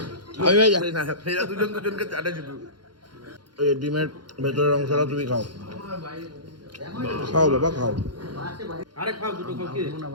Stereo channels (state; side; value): late; left; 0.71 ms